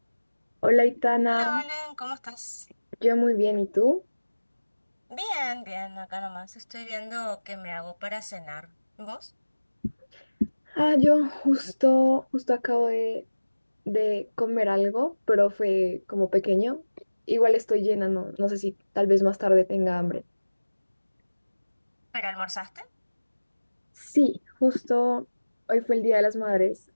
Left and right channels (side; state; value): both; inverted; correlation -1.00